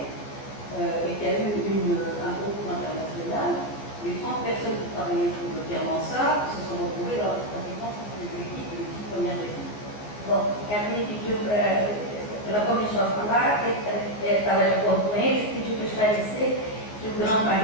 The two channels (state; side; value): late; right; 14 ms